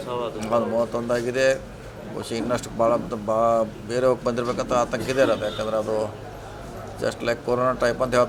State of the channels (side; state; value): both; identical; correlation 1.00